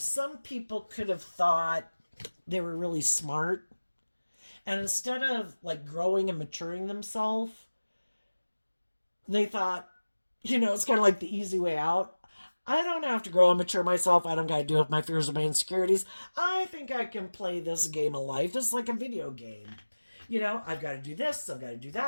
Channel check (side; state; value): both; inverted; correlation -1.00